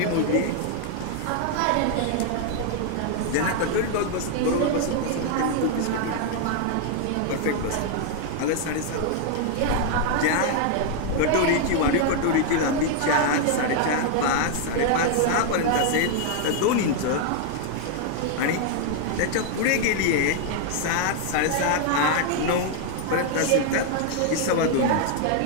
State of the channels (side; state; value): both; different; correlation 0.00